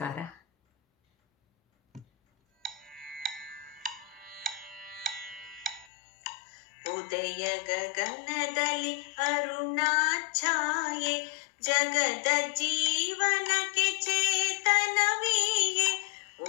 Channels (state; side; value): drops out; right; at 5.9 s